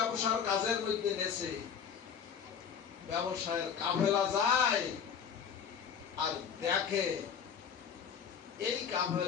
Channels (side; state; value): right; quieter; 7.3 dB